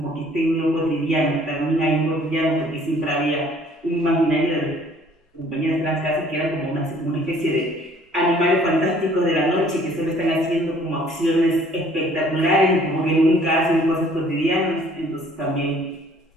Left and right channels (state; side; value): normal; both; correlation 0.57